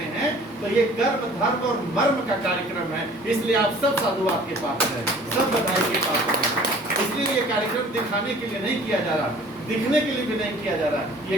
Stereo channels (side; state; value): both; normal; correlation 0.50